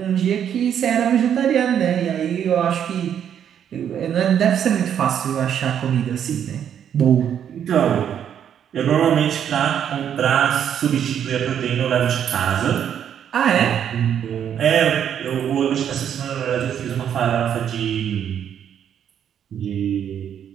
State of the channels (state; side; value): quieter; left; 9.1 dB